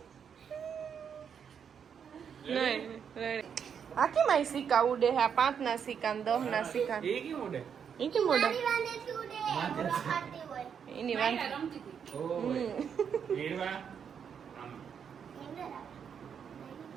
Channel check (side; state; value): left; quieter; 7.4 dB